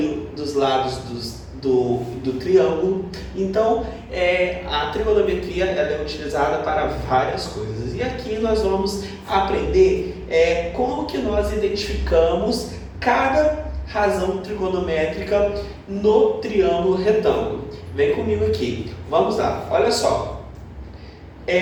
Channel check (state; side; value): identical; both; correlation 1.00